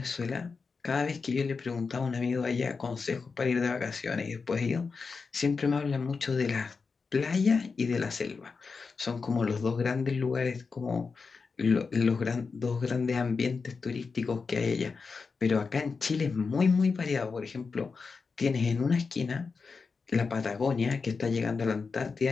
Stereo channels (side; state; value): right; quieter; 4.8 dB